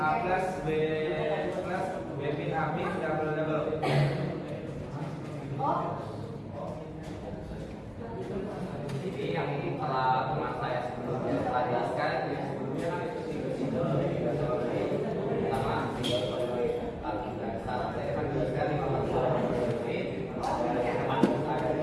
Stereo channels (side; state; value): both; identical; correlation 1.00